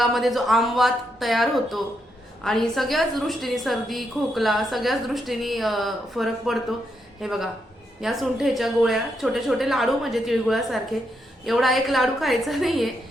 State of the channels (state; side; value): normal; both; correlation 0.80